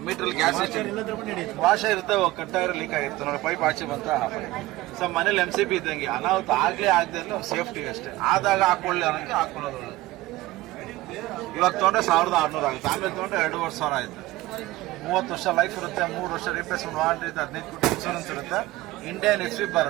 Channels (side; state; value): left; quieter; 17.9 dB